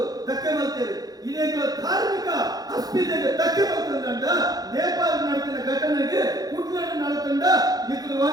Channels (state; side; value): late; left; 0.19 ms